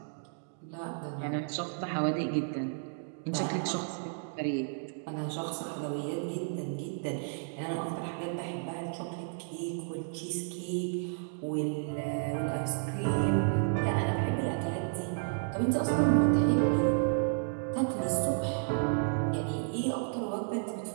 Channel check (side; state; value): left; silent; digital silence